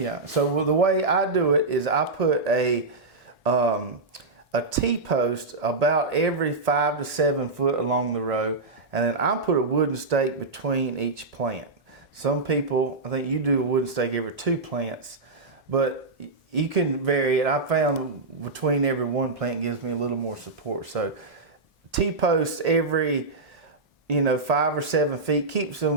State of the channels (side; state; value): left; quieter; 3.4 dB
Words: so the way I do it is I put a T-post about every 5 to 7 foot along the row, and then I put a wooden stake between each plant. Some people, I think you do a wooden stake every 2 plants, but you can vary it. I found between every 1 plant gives me a little more support. So T-posts every 5 or 7 feet keeps